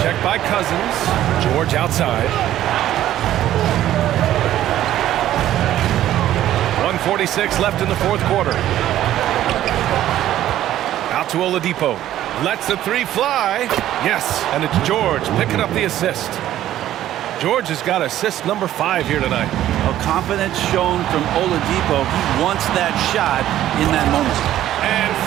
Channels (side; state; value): left; quieter; 12.8 dB